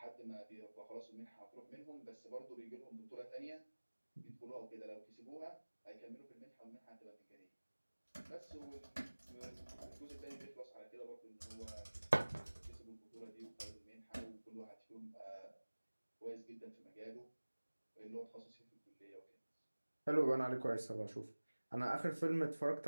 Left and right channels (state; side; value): inverted; both; correlation -1.00